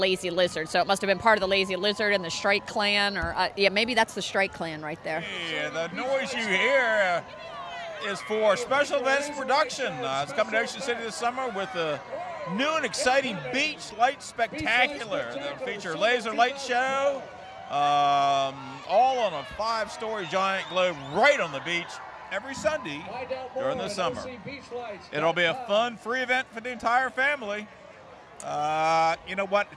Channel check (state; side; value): identical; both; correlation 1.00